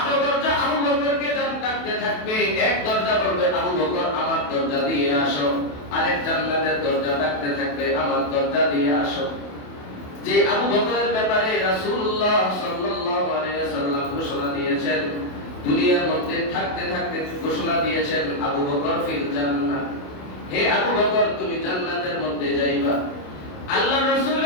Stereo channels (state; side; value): late; right; 28 ms